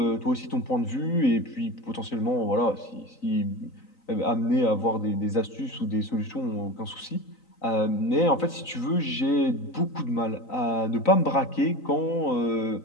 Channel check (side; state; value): right; late; 3.9 ms